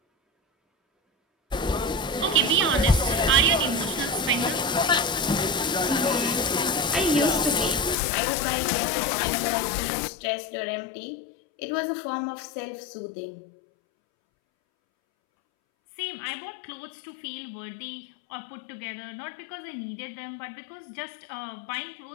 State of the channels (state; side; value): drops out; right; at 8.0 s